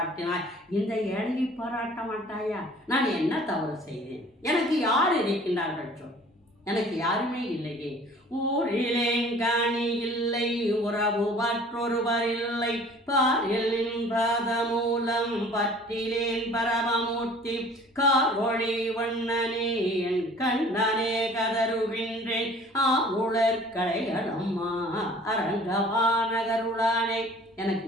இந்த ஏழையை பாராட்ட மாட்டாயா? நான் என்ன தவறு செய்தேன்? எனக்கு யார் இருக்கின்றார்கள் சொல்? எனக்கு யாருமே இல்லையே. ஊரிலேன் காணி இல்லை, உறவு மற்றொருவர் இல்லை, பாரிலின் பாதமூலம் பற்றிலேன் பரமமூர்த்தி, காரொளி வண்ணனே என் கண்ணனே கதறுகின்றேன், ஆளுளர்களையம்மா அரங்கவானகருளானே. எனக்கு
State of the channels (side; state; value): both; normal; correlation 0.50